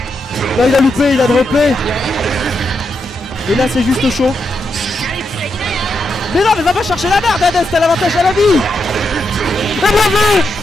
Là il a loupé, il a droppé. Et là c'est juste chaud. Mais non, mais va pas chercher la merde, Hades, t'as l'avantage à la vie. Et bien vu.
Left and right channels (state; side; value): normal; both; correlation 0.83